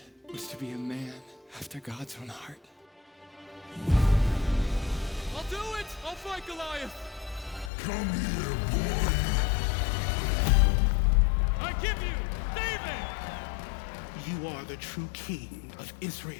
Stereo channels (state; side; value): drops out; right; at 7.7 s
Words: was to be a man after God's own heart. I'll do it! I'll fight Goliath! Come here, boy! I give you David! You are the true king of